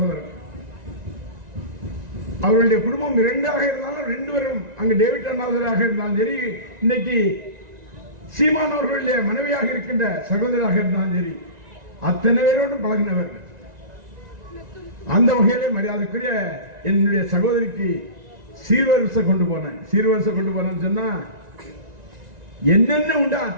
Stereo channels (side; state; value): left; late; 1.9 ms